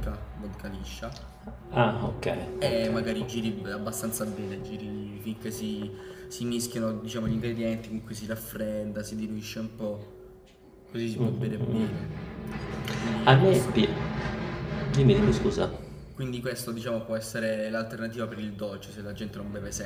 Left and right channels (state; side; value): identical; both; correlation 1.00